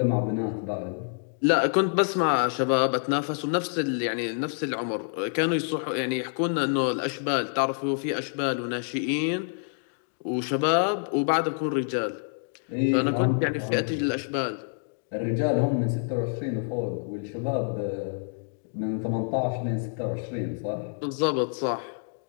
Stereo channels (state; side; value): silent; right; digital silence